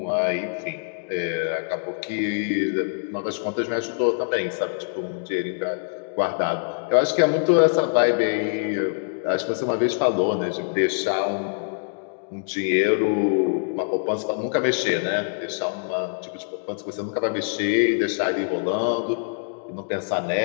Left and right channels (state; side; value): silent; right; digital silence